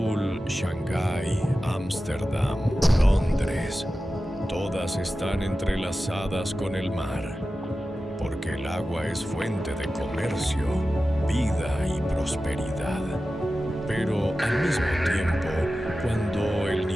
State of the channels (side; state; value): both; normal; correlation 0.94